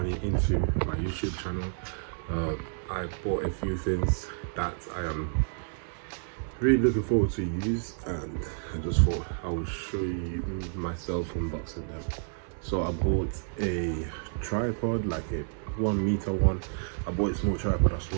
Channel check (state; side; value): silent; left; 58 dB below the other